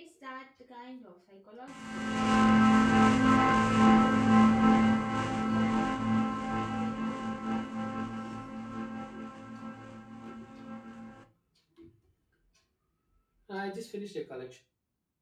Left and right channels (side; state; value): both; identical; correlation 1.00